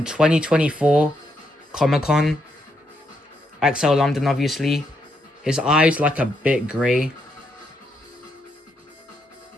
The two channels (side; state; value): both; normal; correlation 0.78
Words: 2024 Comic-Con. XL London, obviously. His eye's like a bit grey